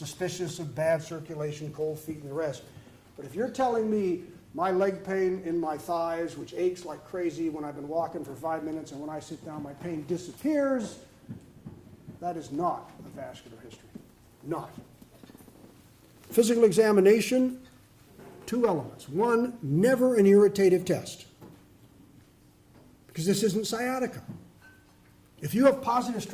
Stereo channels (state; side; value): identical; both; correlation 1.00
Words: of bad circulation, cold feet, and the rest. But if you're telling me my leg pain in my thighs, which aches like crazy when I've been walking for 5 minutes, and when I sit down my pain disappears, that is not a vascular history. Not. Physical examination, 2 elements. One, never an irritative test, because this isn't sciatica. If you have positive